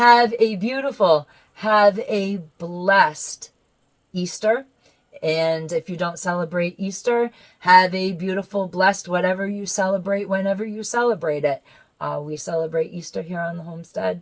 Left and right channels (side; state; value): both; identical; correlation 1.00